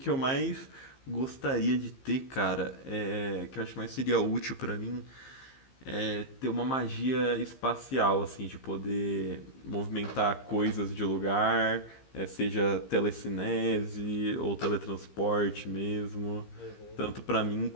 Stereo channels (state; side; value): late; right; 15 ms